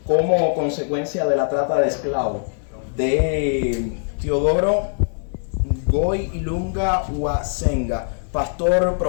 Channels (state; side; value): silent; right; digital silence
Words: como consecuencia de la trata de esclavos, de Teodoro Goy Ilunga Uasenga, pastor,